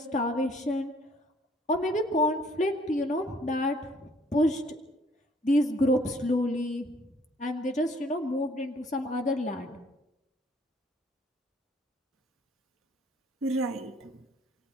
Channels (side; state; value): both; normal; correlation 0.61